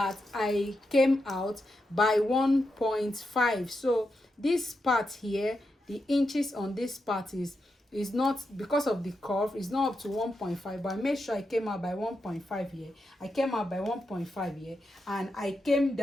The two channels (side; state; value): both; normal; correlation 0.86